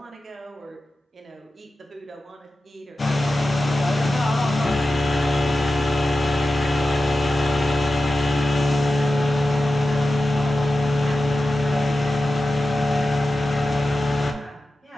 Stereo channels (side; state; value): both; normal; correlation 0.93